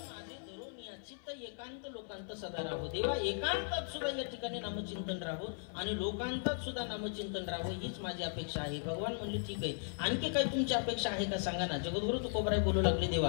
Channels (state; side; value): silent; right; 53 dB below the other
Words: एकांत लोकांत सदा राहो देवा. एकांतात सुद्धा या ठिकाणी नामचिंतन राहो आणि लोकांतात सुद्धा नामचिंतन राहो हीच माझी अपेक्षा आहे. भगवान म्हणले ठीक आहे, आणखी काही तुमची अपेक्षा आहे का सांगा ना. जगद्गुरु तुकोबाराय बोलू लागले